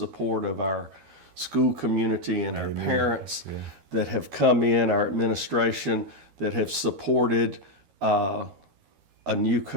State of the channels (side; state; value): left; late; 12 ms